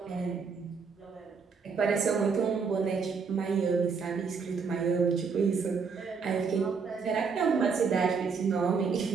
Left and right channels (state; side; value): quieter; left; 5.4 dB